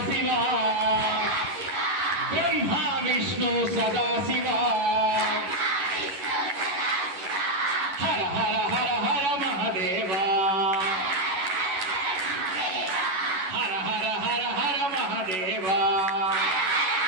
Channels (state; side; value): late; left; 11 ms